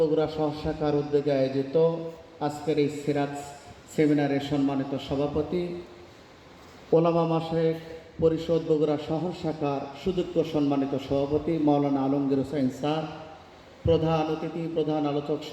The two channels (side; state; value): both; identical; correlation 1.00